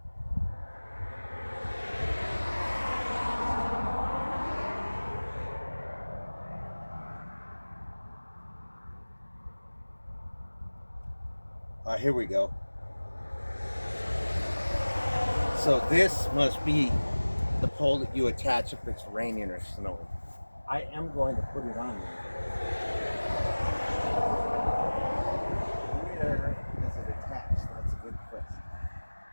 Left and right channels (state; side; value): inverted; both; correlation -1.00